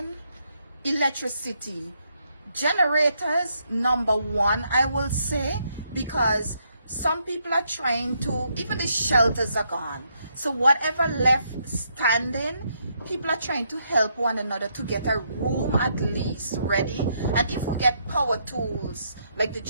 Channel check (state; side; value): inverted; both; correlation -0.75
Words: electricity, generators, number one, I will say, because some people are trying to, even the shelters are gone. So whatever left standing, people are trying to help one another to get a room at least ready. And if we get power tools, like the